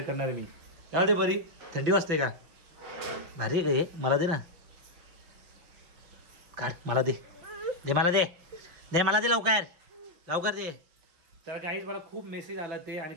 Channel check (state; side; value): late; left; 5.7 ms